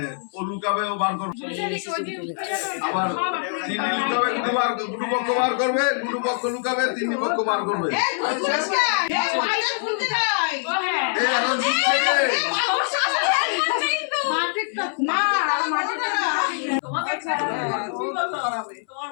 ও লুকাবেও বার করবে আবার তিনি লুকাবে দুটো পক্ষ বার করবে দুটো পক্ষ লুকাবে তিন পক্ষ বার করবে এই এখন দিচ্ছে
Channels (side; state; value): right; silent; 63 dB below the other